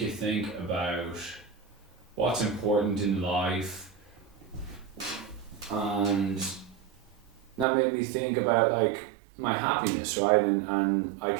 think about what's important in life. And that made me think about like my happiness, right? And I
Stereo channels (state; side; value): drops out; left; at 7.7 s